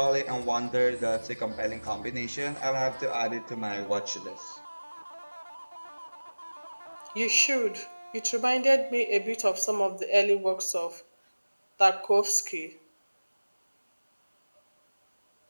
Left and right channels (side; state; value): both; inverted; correlation -1.00